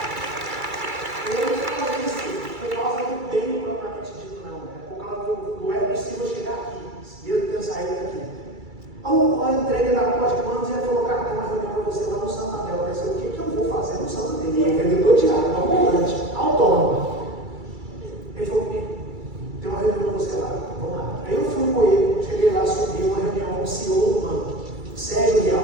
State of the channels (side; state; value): left; late; 2.3 ms